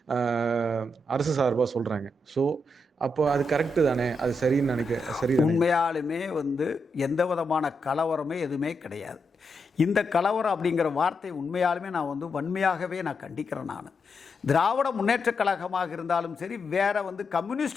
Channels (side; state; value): both; normal; correlation 0.83